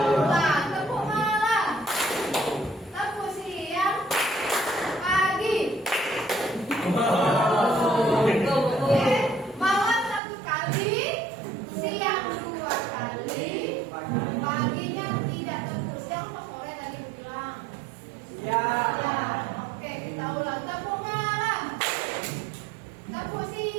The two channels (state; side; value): drops out; left; at 10.2 s